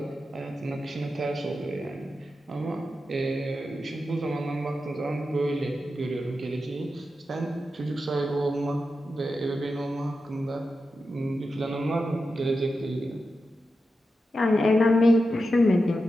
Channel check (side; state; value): both; normal; correlation 0.90